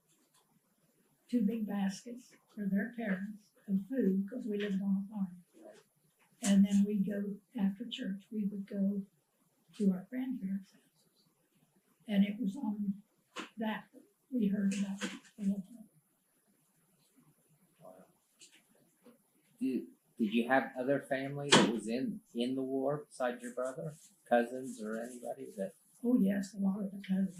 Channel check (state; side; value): identical; both; correlation 1.00